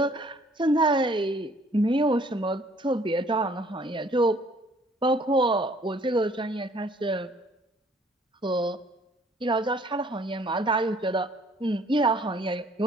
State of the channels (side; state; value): both; normal; correlation 0.59